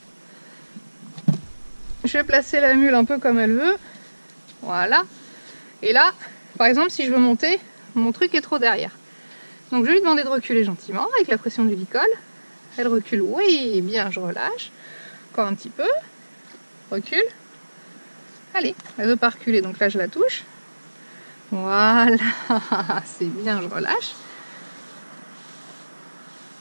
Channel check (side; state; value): both; inverted; correlation -1.00